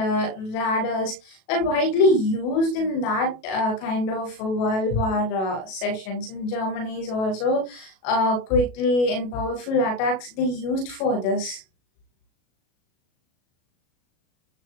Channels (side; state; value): right; late; 37 ms